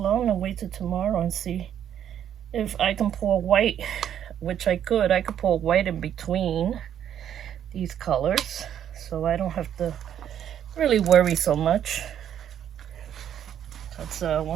and wait till tomorrow and see if I can pour white, which I could pour white in between these colors, so I don't have to really worry so much. But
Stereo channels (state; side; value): quieter; left; 9.8 dB